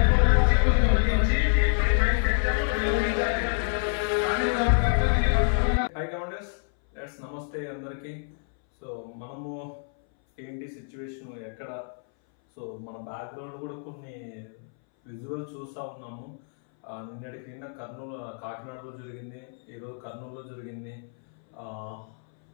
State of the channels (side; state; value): right; silent; 60 dB below the other